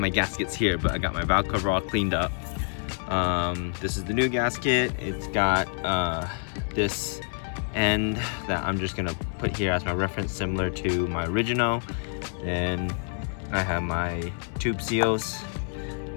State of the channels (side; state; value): right; silent; 60 dB below the other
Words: gaskets here, but I got my valve cover all cleaned up. This is the new gasket. It's got this end that I'm just gonna put here as my reference, similar to my original. Then I have my tube seals